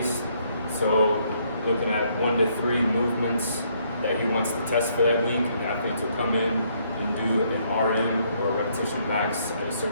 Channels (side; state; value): both; inverted; correlation -0.70